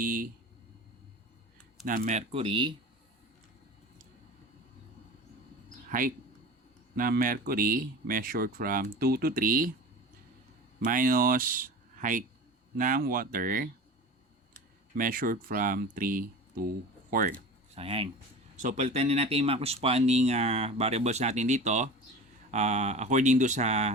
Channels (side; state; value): both; normal; correlation 0.34